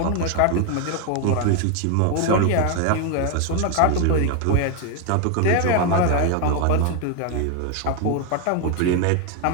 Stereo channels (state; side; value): different; both; correlation 0.01